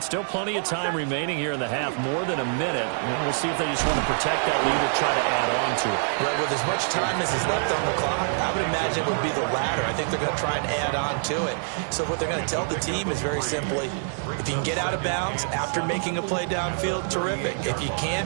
still plenty of time remaining here in the half, more than a minute. And we'll see if they just want to protect that lead or try to add on to it. Right, with as much time as is left on the clock, I would imagine it would be the latter. I think they're going to try and add on to it. So what they're going to tell the team is very simply, if you can get out of bounds after making a play downfield, terrific. If you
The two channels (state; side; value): silent; left; digital silence